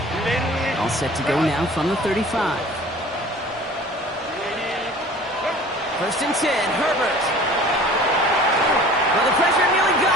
All set to go now from the 35. First and 10, Herbert. Well, the pressure nearly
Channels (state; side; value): normal; both; correlation 0.45